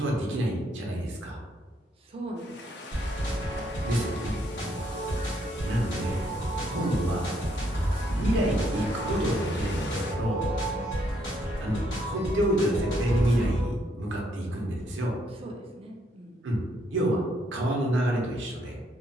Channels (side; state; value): both; normal; correlation 0.72